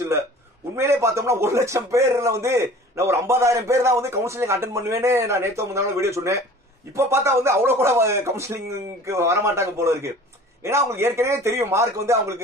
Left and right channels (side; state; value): both; normal; correlation 0.45